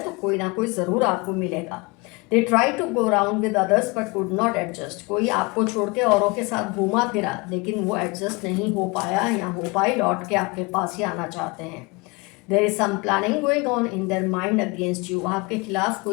तो कोई ना कोई ज़रूर आपको मिलेगा। They try to go around with others but could not adjust. कोई आपको छोड़ के औरों के साथ घूमा फिरा लेकिन वो एडजस्ट नहीं हो पाया या हो पाई, लौट के आपके पास ही आना चाहते हैं। There is some planning going on in their mind against you. आपके खिलाफ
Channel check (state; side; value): quieter; right; 27.0 dB